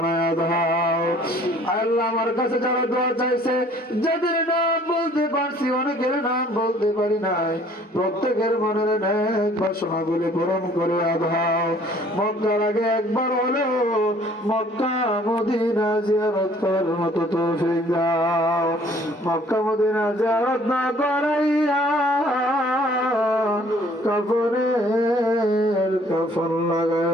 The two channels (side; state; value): both; normal; correlation 0.57